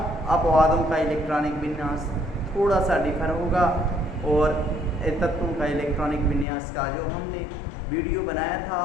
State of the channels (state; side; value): drops out; right; at 6.5 s